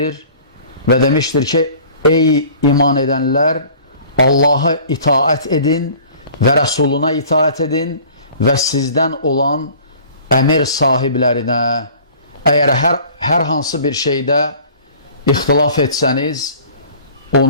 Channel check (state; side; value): inverted; both; correlation -0.48